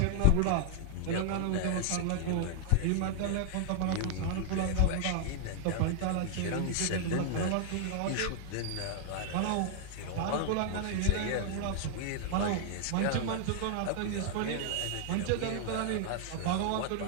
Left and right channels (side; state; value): both; different; correlation 0.00